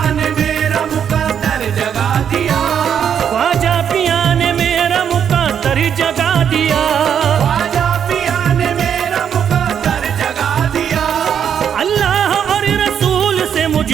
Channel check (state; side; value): quieter; left; 8.3 dB